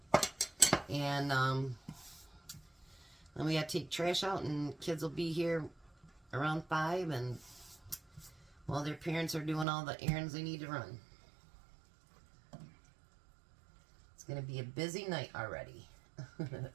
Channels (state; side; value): drops out; left; at 9.7 s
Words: And then we got to take trash out, and kids will be here around 5, and while their parents are doing all the errands they need to run. It's going to be a busy night already.